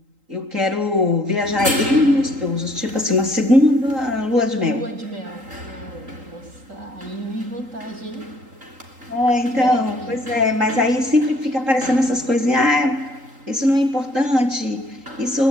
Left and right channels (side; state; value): left; late; 3.8 ms